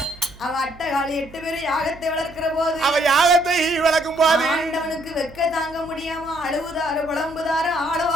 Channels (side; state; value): right; noise; hum, 21 dB below the sound